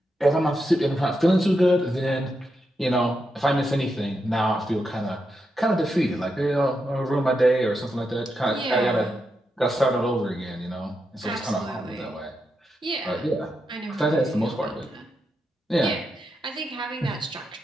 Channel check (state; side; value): normal; both; correlation 0.85